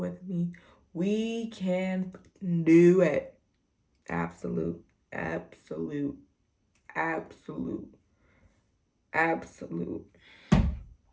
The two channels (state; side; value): identical; both; correlation 1.00